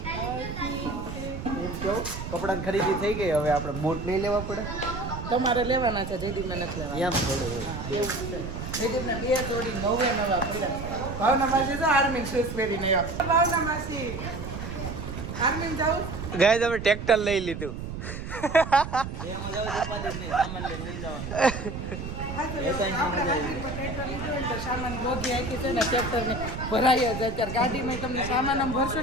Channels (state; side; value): noise; right; rumble, 7 dB below the sound